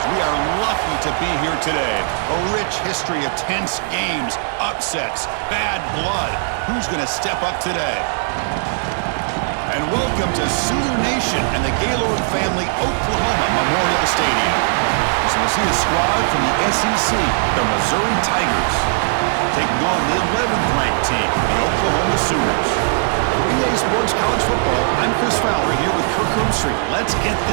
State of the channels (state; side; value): silent; left; 67 dB below the other